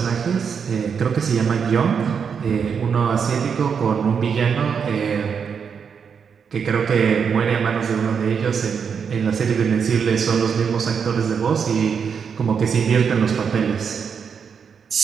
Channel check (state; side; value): quieter; left; 6.6 dB